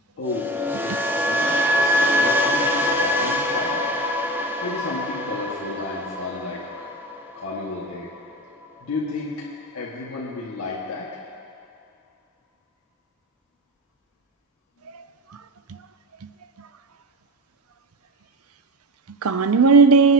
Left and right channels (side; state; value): both; normal; correlation 0.27